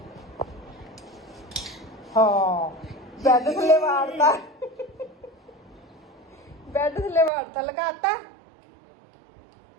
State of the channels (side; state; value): left; drops out; at 7.3 s